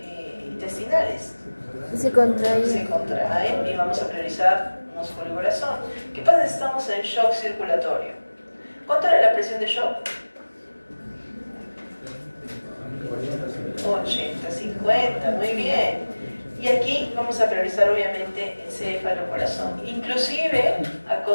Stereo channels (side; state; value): both; inverted; correlation -1.00